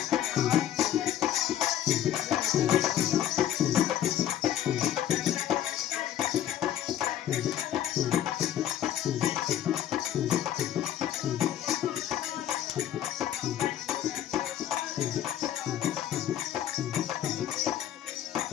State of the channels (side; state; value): right; quieter; 11.0 dB